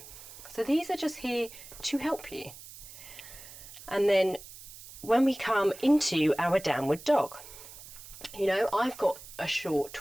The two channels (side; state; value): right; noise; hiss, 16 dB below the sound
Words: So these are just here to help you. And then when we come into our downward dog, you know, I've got a short